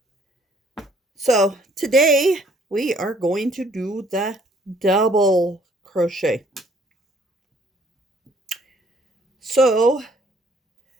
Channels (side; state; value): both; normal; correlation 0.62